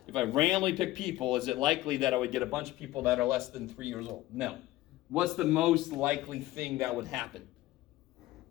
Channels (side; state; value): right; quieter; 16.7 dB